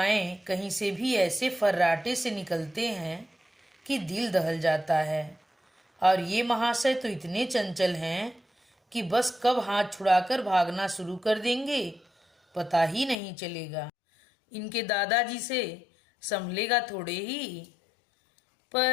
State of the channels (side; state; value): right; drops out; at 13.2 s